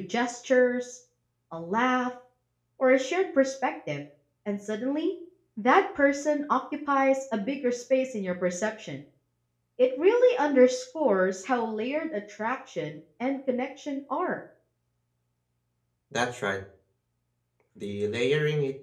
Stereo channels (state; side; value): identical; both; correlation 1.00